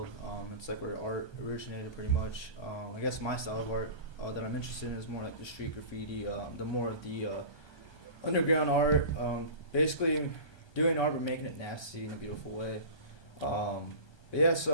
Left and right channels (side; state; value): right; late; 1.2 ms